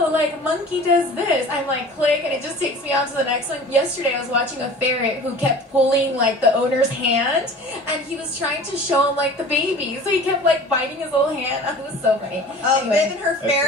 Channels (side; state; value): both; normal; correlation 0.42